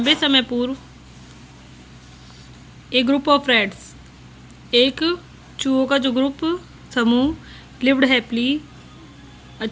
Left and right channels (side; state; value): both; identical; correlation 1.00